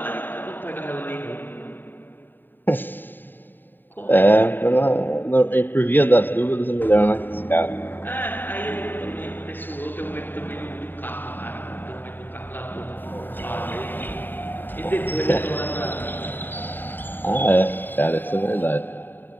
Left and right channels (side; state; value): right; late; 0.092 ms